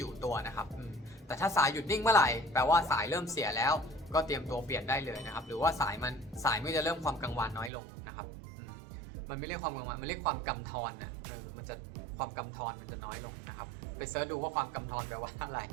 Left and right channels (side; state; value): left; drops out; at 7.7 s